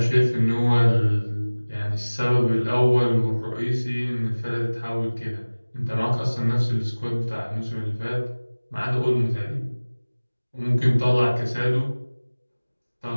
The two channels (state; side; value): inverted; both; correlation -1.00